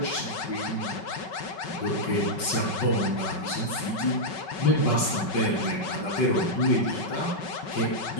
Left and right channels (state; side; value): late; right; 5.3 ms